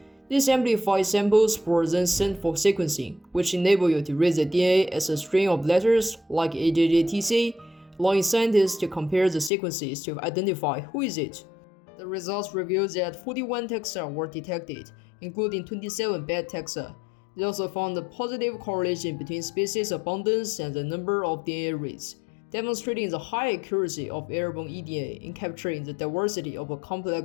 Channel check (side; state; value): right; drops out; at 9.5 s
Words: These amplified samples were then sent for sequencing, which enable you to read the DNA as a string of letters like AJJTC, allowing scientists to compare the sequences to identify who is it. The results revealed that 41 taxa were detected, including 27 bad taxa. They also found a positive correlation between species abundance and the number of DNA reads, demonstrating the high accuracy of airborne EDA in capturing the diversity of a